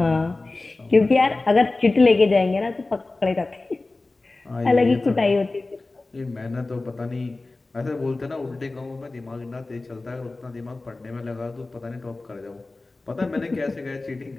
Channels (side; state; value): right; quieter; 3.2 dB